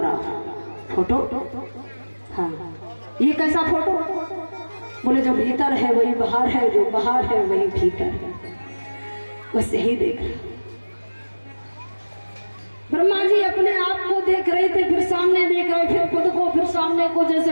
फोटो? हाँ। ये कैसा फोटो? बोले जो भीतर है वही बाहर है, जो बाहर है वही भीतर है, बस यही देख रहे। ब्रह्मा जी अपने आप को देख रहे थे, फिर सामने देख रहे, फिर खुद को, फिर सामने को,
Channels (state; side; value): inverted; both; correlation -1.00